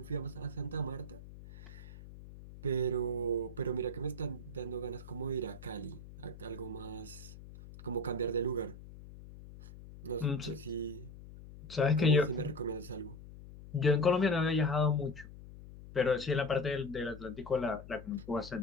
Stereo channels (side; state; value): left; noise; hum, 15 dB below the sound